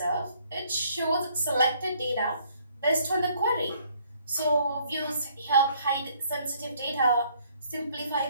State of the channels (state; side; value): inverted; both; correlation -0.64